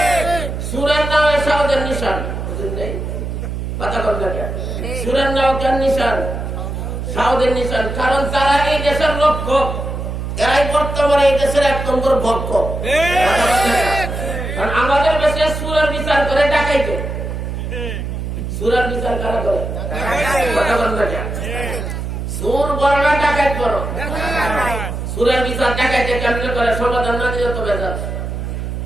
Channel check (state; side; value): noise; right; hum, 5 dB below the sound